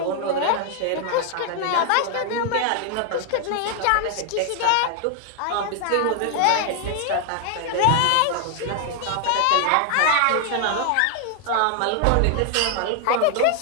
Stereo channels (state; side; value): different; both; correlation 0.00